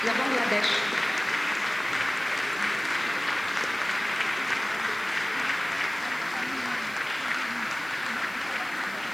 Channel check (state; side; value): noise; right; hiss, 20 dB below the sound